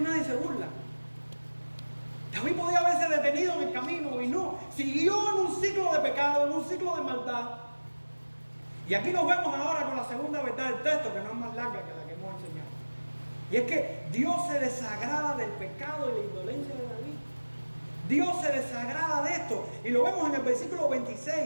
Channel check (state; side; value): inverted; both; correlation -1.00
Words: se burla. David podía haberse detenido en el camino y no, siguió en un ciclo de pecado, en un ciclo de maldad. Y aquí nos vemos ahora con la segunda verdad del texto, que no es más larga que la que hemos enseñado. Y es que Dios se desagrada del pecado y la indolencia de David. Dios se desagrada de esto. Y lo vemos en el versículo 26